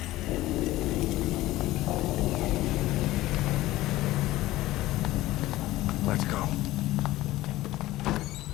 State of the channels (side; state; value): right; quieter; 16.7 dB